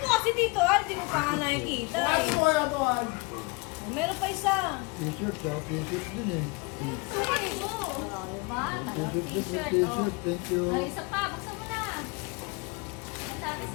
kasi dito, hindi mo pa nga nakikita. Wala to, Meron pa isa. T-shirt, t-shirt din eh. Sukat mo! Diba? T-shirt, thank you. Ay, isa pa. Buksan mo na. Sabi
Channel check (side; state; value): right; quieter; 28.1 dB